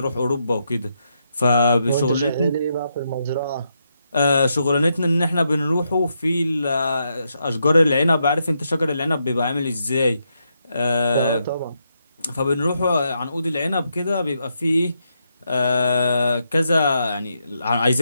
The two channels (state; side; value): inverted; both; correlation -0.81